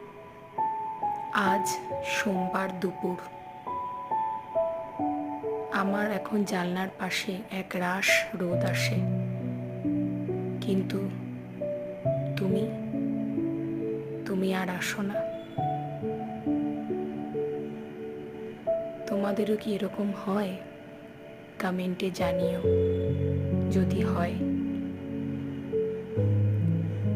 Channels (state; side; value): identical; both; correlation 1.00